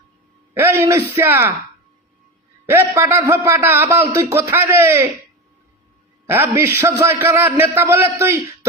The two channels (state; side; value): normal; both; correlation 0.21